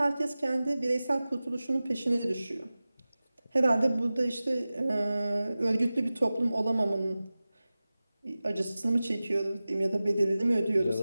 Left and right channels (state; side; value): inverted; both; correlation -0.96